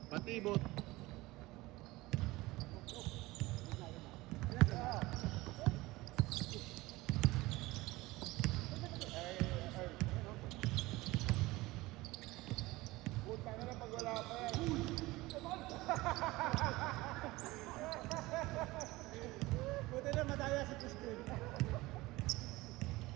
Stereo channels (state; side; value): quieter; left; 20.1 dB